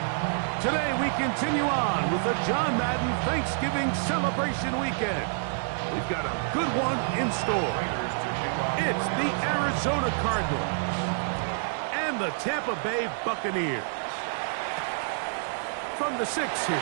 Today we continue on with the John Madden Thanksgiving celebration weekend. We've got a good one in store. It's the Arizona Cardinals and the Tampa Bay Buccaneers. From the 6, here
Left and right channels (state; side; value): silent; left; digital silence